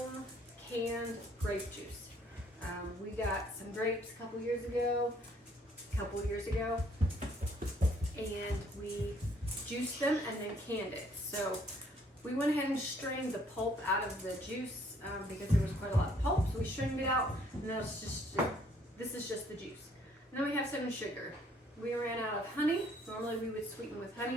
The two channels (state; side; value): normal; both; correlation 0.64